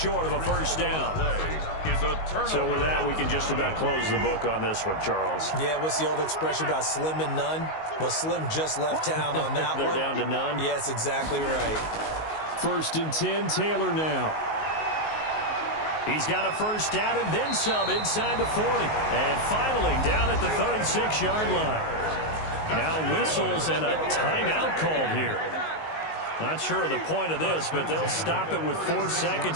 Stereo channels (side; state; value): right; late; 19 ms